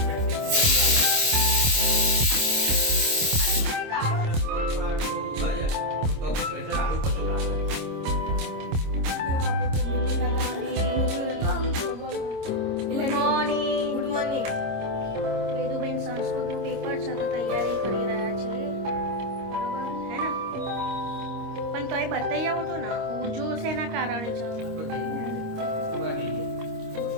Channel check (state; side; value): late; left; 26 ms